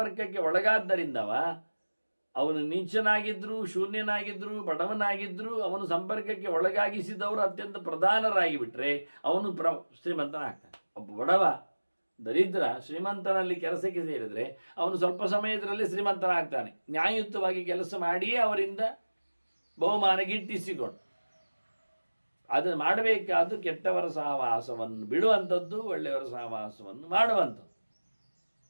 ಒಳಗಾದ್ದರಿಂದವ, ಅವನು ನೀಚನಾಗಿದ್ದರೂ ಶೂನ್ಯನಾಗಿದ್ದರೂ ಬಡವನಾಗಿದ್ದರೂ ಅವನು ಸಂಪರ್ಕಕ್ಕೆ ಒಳಗಾಗಿಸಿದವರು ಅತ್ಯಂತ ಪ್ರಧಾನರಾಗಿ ಬಿಟ್ಟರೆ ಅವನು ಶ್ರೀಮಂತನಾಗ್ತಾನೆ. ಒಬ್ಬ ಬಡವ ದರಿದ್ರ ಶ್ರೀಮಂತನಲ್ಲಿ ಕೆಲಸಕ್ಕೆ ಸೇರಿದರೆ ಅವನು ಸ್ವಲ್ಪ ಸಮಯದಲ್ಲೇ ಶ್ರೀಮಂತನಾಗ್ತಾನೆ. ನ್ಯಾಯಯುತವಾಗಿ ಕೆಲಸ ಮಾಡಿಯೇ ಅವರಿಂದ ಬಹುಮಾನ ಗಿಟ್ಟಿಸಿಕೊಂಡು. ಅದನ್ನು ಮಾಡಬೇಕಾದ್ದು ಕೆಟ್ಟವರ ಸಹವಾಸವನ್ನು ಬಿಡುವಂಥದ್ದು, ಒಳ್ಳೆಯವರ ಸಹವಾಸವನ್ನು ಮಾಡುವಂಥದ್ದು.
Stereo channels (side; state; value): both; inverted; correlation -1.00